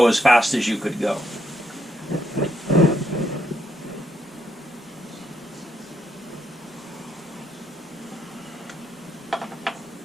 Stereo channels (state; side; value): normal; both; correlation 0.77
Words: as fast as you could go.